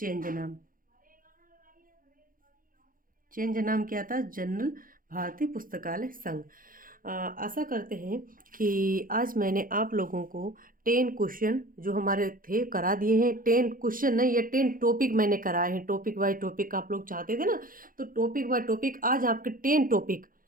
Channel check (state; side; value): late; left; 0.40 ms